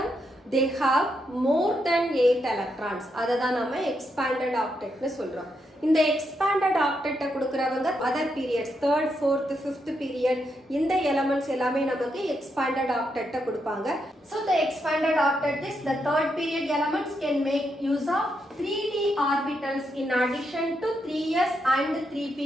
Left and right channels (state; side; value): normal; both; correlation 0.81